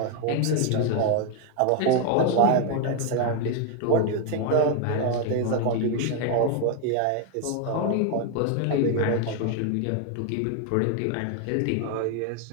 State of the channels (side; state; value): both; different; correlation 0.00